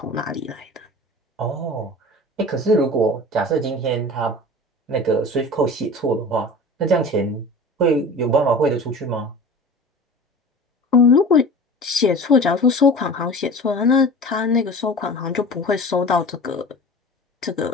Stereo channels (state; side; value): normal; both; correlation 0.38